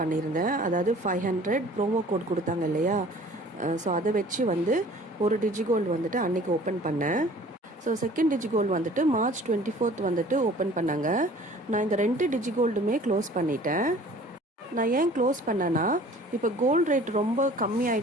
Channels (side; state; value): both; normal; correlation 0.49